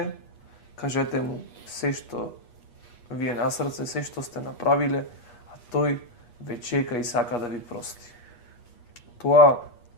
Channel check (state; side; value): late; right; 8.4 ms